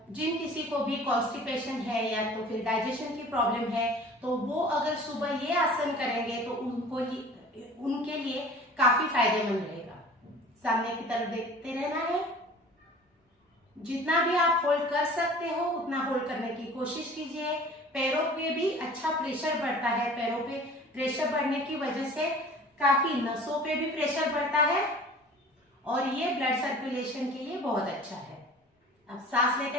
किसी को भी कॉन्स्टिपेशन है या तो फिर डाइजेशन की प्रॉब्लम है, तो वो अगर सुबह ये आसन करेंगे तो उनके लिए काफी फायदेमंद रहेगा। सामने की तरफ देखते रहना है। जितना भी आप होल्ड कर सकते हो उतना होल्ड करने की कोशिश कीजिए। पैरों पे भी अच्छा प्रेशर बढ़ता है। पैरों पे प्रेशर बढ़ने की वजह से काफी नसों पे भी प्रेशर बढ़ता है और ये ब्लड सर्कुलेशन के लिए बहुत अच्छा है। अब सांस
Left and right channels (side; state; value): both; normal; correlation 0.44